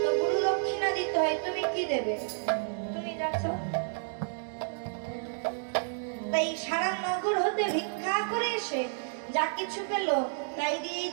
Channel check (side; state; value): left; silent; digital silence